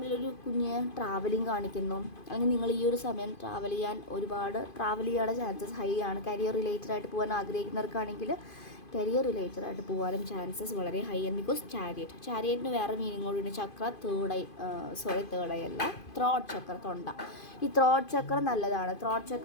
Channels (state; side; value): late; right; 2.5 ms